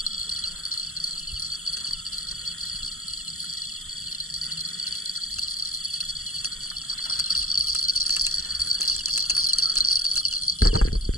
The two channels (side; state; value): right; late; 0.63 ms